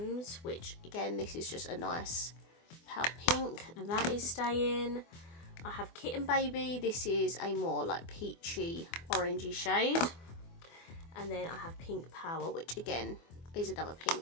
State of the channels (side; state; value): right; late; 24 ms